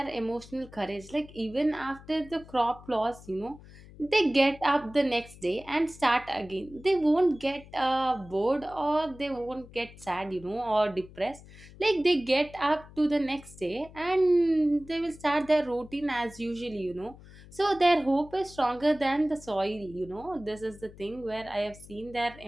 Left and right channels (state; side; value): noise; left; hum, 20 dB below the sound